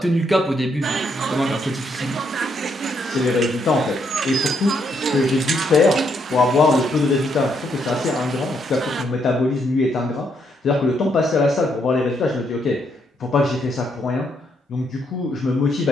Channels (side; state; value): both; normal; correlation 0.75